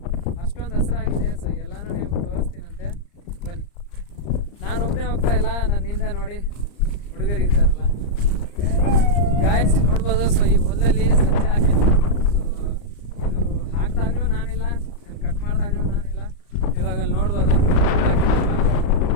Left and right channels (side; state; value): right; late; 34 ms